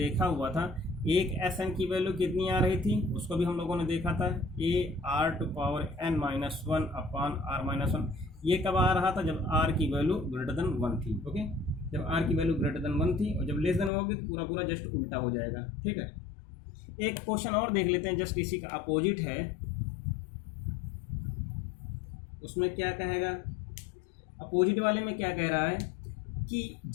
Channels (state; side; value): drops out; right; at 13.9 s